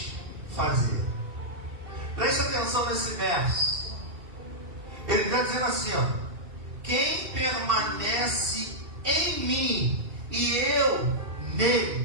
fazer. Preste atenção nesse verso. Ele está dizendo assim, ó. Quem permanece em mim e eu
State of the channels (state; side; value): late; left; 2.7 ms